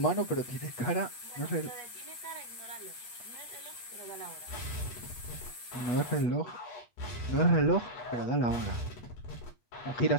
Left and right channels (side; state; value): right; late; 8.3 ms